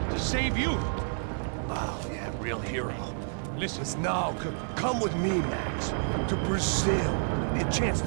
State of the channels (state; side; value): silent; left; 58 dB below the other